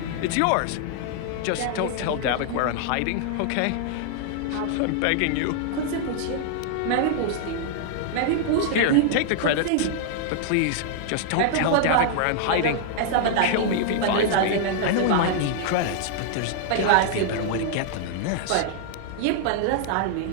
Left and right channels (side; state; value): both; different; correlation -0.01